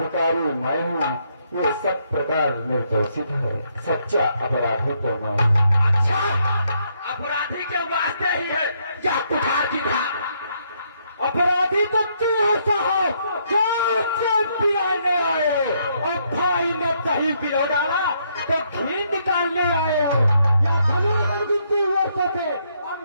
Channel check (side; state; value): both; inverted; correlation -0.73